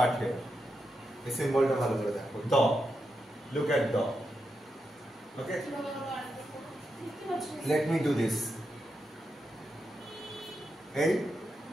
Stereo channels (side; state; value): both; normal; correlation 0.86